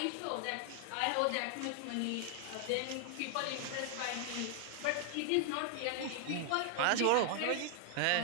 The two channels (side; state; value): both; different; correlation 0.00